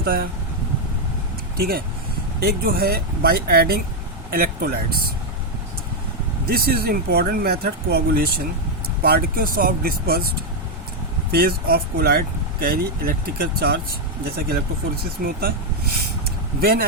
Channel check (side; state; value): both; normal; correlation 0.01